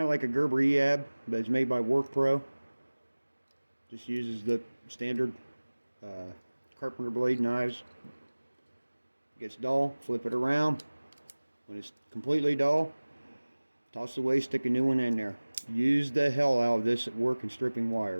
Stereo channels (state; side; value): inverted; both; correlation -1.00